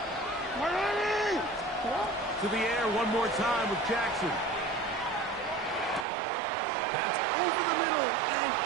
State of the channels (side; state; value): left; drops out; at 6.1 s